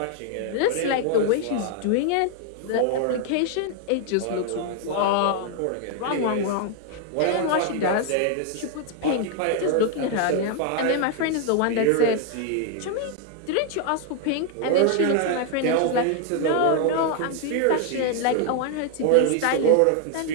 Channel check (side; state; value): both; different; correlation 0.00